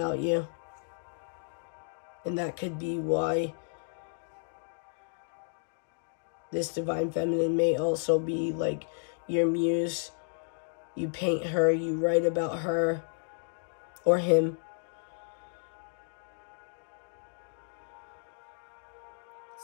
you. And that could be why this divine feminine may also be like your muse. You paint her, you write about her or him.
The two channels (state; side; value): silent; right; digital silence